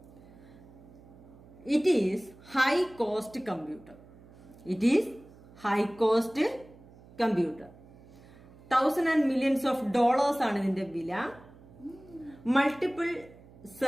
It is high cost computer. It is high cost computer. Thousands and millions of dollars ആണ് ഇതിന്റെ വില. Multiple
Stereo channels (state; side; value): noise; right; hum, 22 dB below the sound